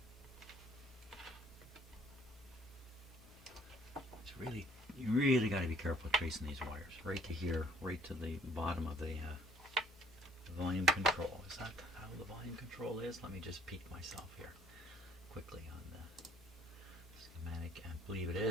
Really, you really got to be careful tracing these wires. Right to here, right to the bottom of the volume control. Is that how the volume control is? Let me just peek myself here quickly on the schematic. I believe it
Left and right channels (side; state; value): both; normal; correlation 0.60